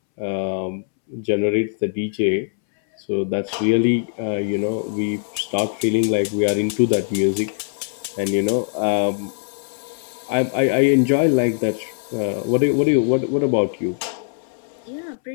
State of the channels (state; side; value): silent; right; 65 dB below the other